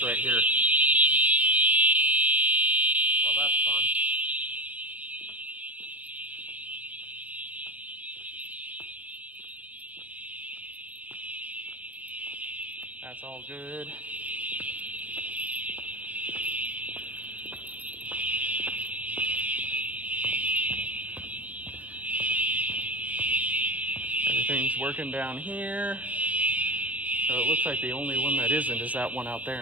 right here. Well, that's fun. That's all good. Everything's working down here. So it looks like the only one that isn't is that one out there,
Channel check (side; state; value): left; late; 0.072 ms